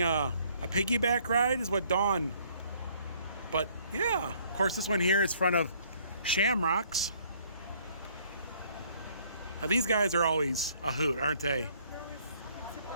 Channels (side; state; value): both; inverted; correlation -0.63